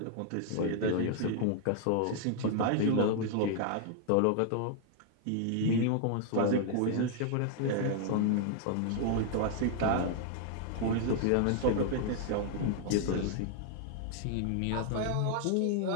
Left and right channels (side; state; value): both; different; correlation 0.00